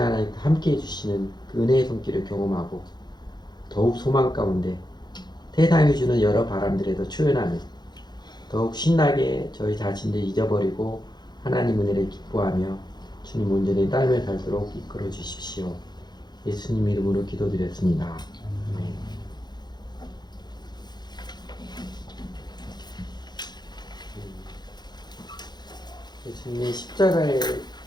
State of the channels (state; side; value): late; right; 0.21 ms